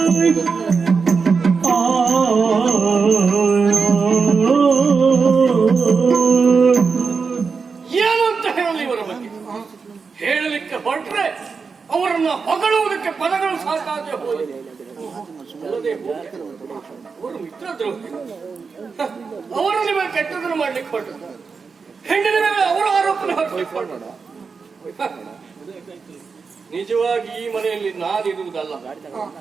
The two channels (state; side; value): quieter; left; 5.1 dB